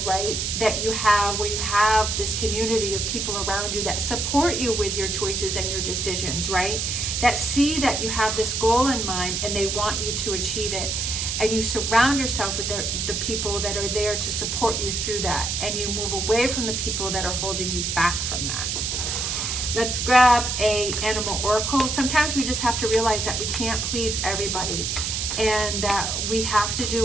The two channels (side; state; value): right; noise; hiss, 1 dB below the sound